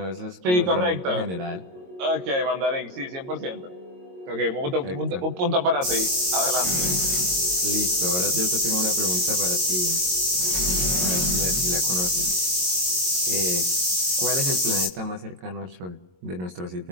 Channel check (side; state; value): left; late; 22 ms